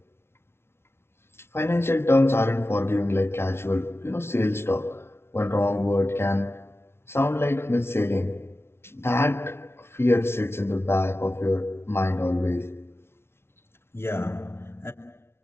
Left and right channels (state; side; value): late; right; 0.12 ms